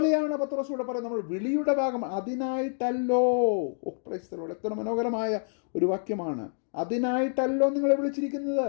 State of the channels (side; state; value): right; silent; digital silence